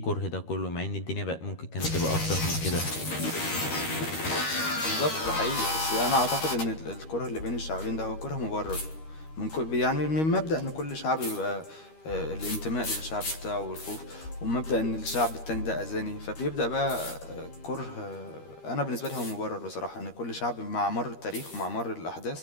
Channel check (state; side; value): late; right; 13 ms